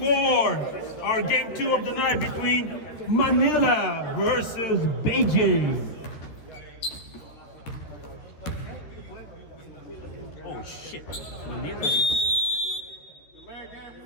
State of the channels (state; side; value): late; right; 13 ms